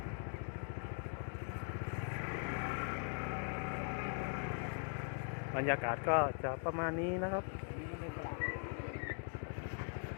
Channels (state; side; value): silent; right; 50 dB below the other